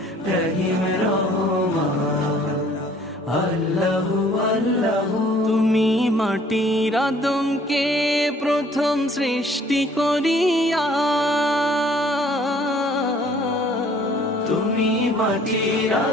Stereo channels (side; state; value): both; normal; correlation 0.57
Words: রহিম রহমান। আল্লাহু আল্লাহু তুমি মাটির আদমকে প্রথম সৃষ্টি করিয়া, তুমি মাটির